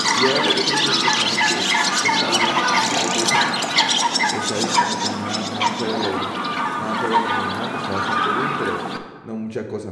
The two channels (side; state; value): both; identical; correlation 1.00